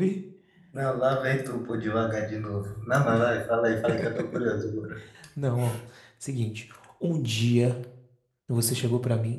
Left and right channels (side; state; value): both; identical; correlation 1.00